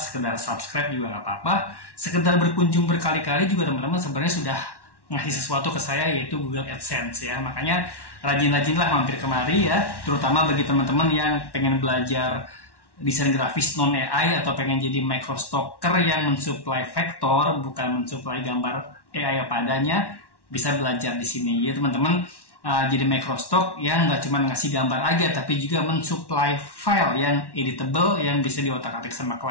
subscribe juga nggak apa-apa. Sekedar berkunjung berkali-kali juga teman-teman sebenarnya sudah ngasih sesuatu ke saya, yaitu Google AdSense ya. Makanya rajin-rajinlah mampir kemari ya, terutama bagi teman-teman yang pengen belajar desain grafis non AI atau pengen jadi microstocker yang mensuplai vektor, bukan mensuplai gambar AI apa adanya, bisa belajar di sini ya teman-teman. Jadi microstock yang nggak cuma ngasih gambar aja, tapi juga mensuplai file yang editable, yang bisa diotak-atik sama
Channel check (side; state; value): right; late; 1.1 ms